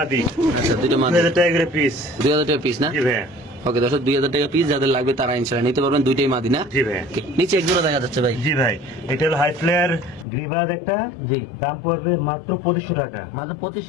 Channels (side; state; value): right; drops out; at 10.2 s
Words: আচ্ছা, দুটো মাদি। 2000 টাকা করে পিস। 2000 টাকা পিস না? জি ভাই। ওকে দর্শক 2000 টাকা পিস, যাদের লাগবে তারা ইনশাআল্লাহ নিতে পারবেন। দুইটাই মাদি না? জি ভাই। Okay, নিচে এক জোড়া দেখা যাচ্ছে ভাই। জি ভাই। এটা হলো হাই ফ্লেয়ার গ্রিবাজ একটা। জি। দাম পড়বে মাত্র 2500 টাকা। মাত্র